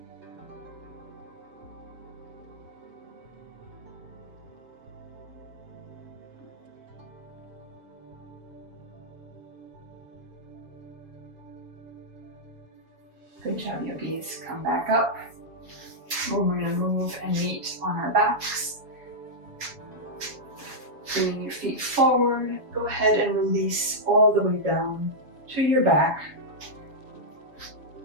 Good job, yogis. Come back up. We're going to move and meet on our backs. Bringing your feet forward. Go ahead and release all the way down to your back.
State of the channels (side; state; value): left; late; 7.1 ms